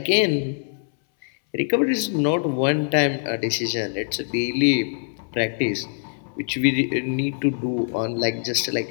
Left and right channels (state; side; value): silent; right; 63 dB below the other